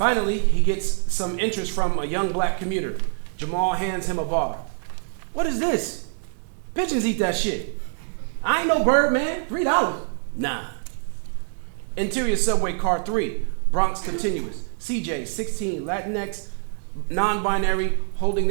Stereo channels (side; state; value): left; silent; digital silence